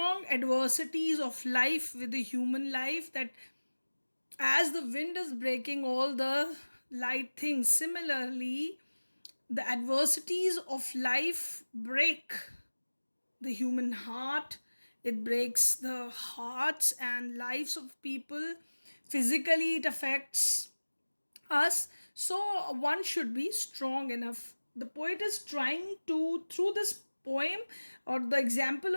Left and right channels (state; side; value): inverted; both; correlation -1.00